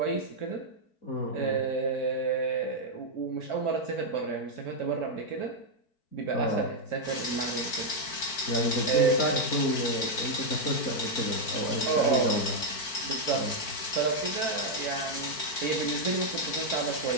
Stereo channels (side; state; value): right; late; 4.5 ms